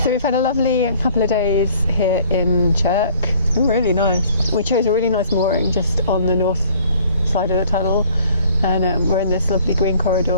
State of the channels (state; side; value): inverted; both; correlation -0.55